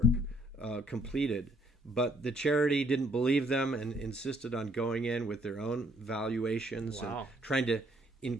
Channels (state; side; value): normal; both; correlation 0.66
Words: completed but the charity didn't believe them and insisted on going in with their own valuations and trying to